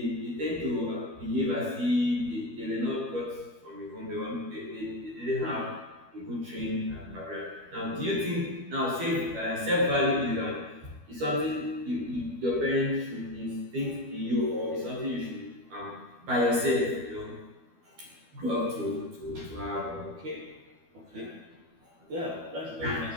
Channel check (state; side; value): late; left; 12 ms